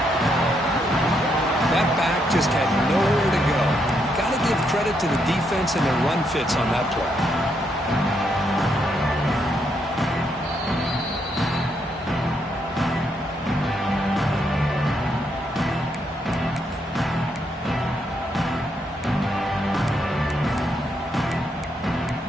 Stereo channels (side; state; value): both; normal; correlation 0.77